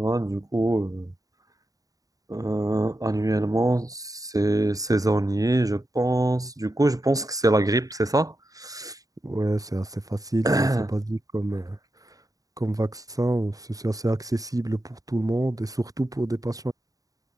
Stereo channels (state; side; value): late; left; 0.17 ms